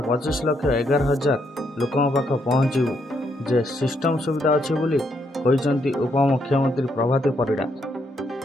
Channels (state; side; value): normal; both; correlation 0.76